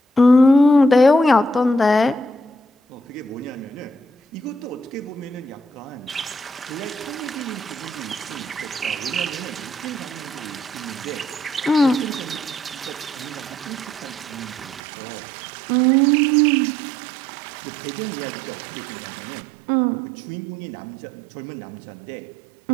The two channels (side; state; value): left; drops out; at 14.8 s